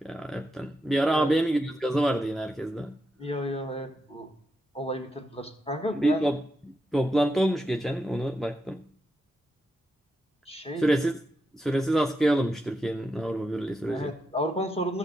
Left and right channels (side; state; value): both; normal; correlation 0.85